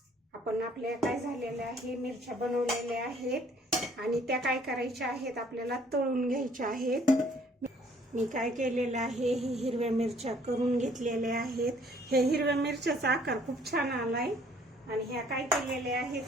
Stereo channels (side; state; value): both; normal; correlation 0.59